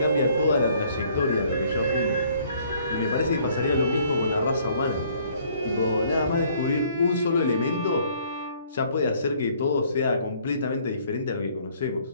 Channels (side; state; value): both; inverted; correlation -0.61